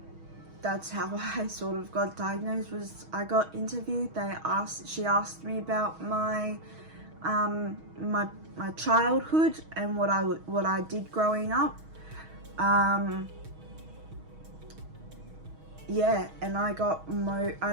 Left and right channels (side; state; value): left; late; 6.3 ms